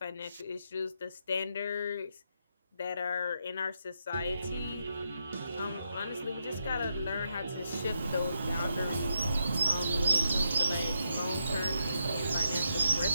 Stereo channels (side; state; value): both; inverted; correlation -0.82